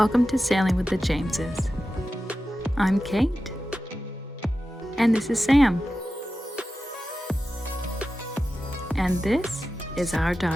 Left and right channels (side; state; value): both; normal; correlation 0.93